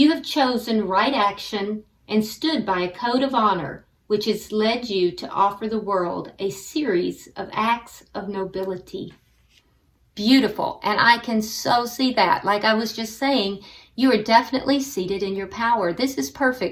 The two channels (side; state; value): both; identical; correlation 1.00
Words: have chosen right action and stood by a code of honor, which has led you to offer the world a series of acts of nobility. Beautiful, and I can so see that. Like I was just saying, you are definitely seated in your power. This is